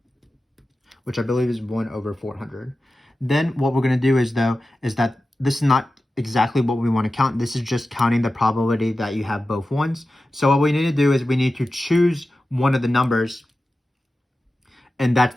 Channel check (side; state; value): both; normal; correlation 0.94